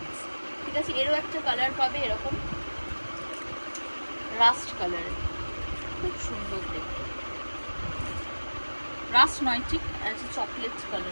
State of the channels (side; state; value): both; inverted; correlation -1.00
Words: ঠিক আছে? এরও একটা কালার পাবে এরকম রাস্ট কালারের, খুব সুন্দর দেখতে, রাস্ট নয় ঠিক আছে, চকলেট